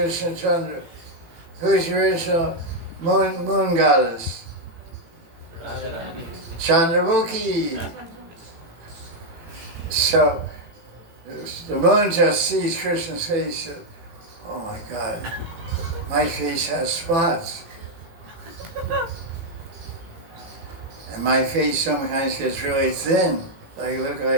Chandra. Who's the original moon goddess? Radha. Chandramukhi. So the moon just sees Krishna's face. Oh my God, my face has spots. And my face sometimes gets really thin. Like look like I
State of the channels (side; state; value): left; late; 18 ms